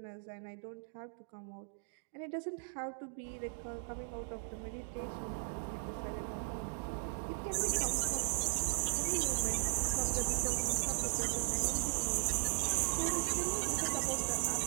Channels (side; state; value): left; silent; digital silence